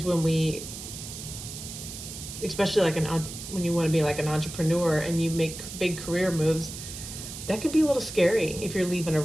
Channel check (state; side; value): noise; right; hiss, 10 dB below the sound